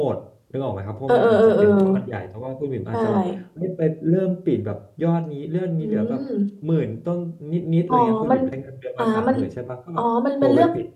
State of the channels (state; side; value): identical; both; correlation 1.00